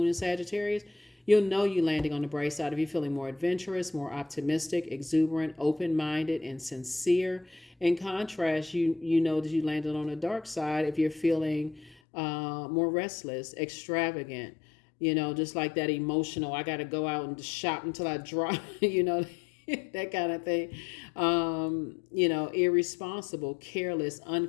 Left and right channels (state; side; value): drops out; right; at 12.0 s